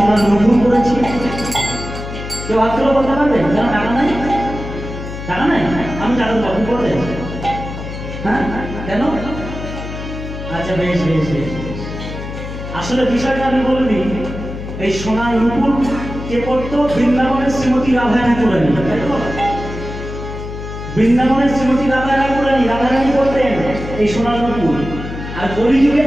নতুন করেছি? কেউ হাত তুলে বলতে পারবেন? কেন টাকা নাই? টাকা নাই? আমি টাকা কখন করবেন? হ্যাঁ কেন? আচ্ছা বেশ বেশ বেশ। আসলে বিষয়টা আমি বলে দিই, এই সোনার নূপুর কে পড়তো? বৃন্দাবনের শ্রীমতী রাধা ঠাকুরানী। বৃন্দাবনের শ্রীমতী রাধা রাধারানী করতেন এই সোনার নূপুর। আর কলিযুগে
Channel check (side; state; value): left; noise; hum, 8 dB below the sound